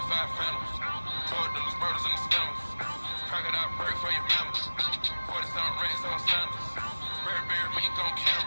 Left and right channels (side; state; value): both; inverted; correlation -1.00